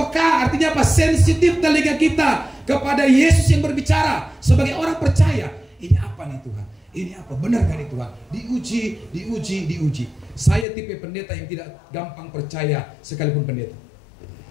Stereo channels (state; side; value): drops out; right; at 10.7 s